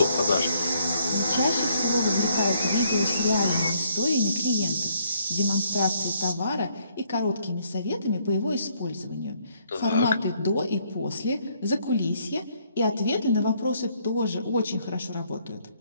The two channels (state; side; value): inverted; both; correlation -0.68